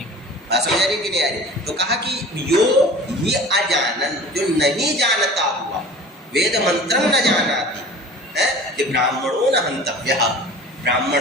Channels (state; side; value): normal; both; correlation 0.41